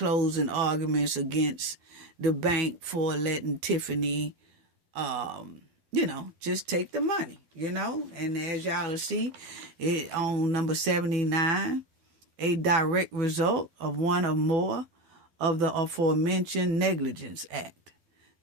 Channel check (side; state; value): left; late; 12 ms